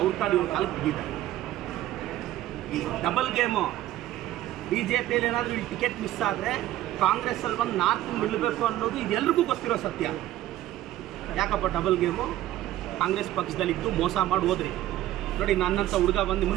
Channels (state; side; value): quieter; left; 14.1 dB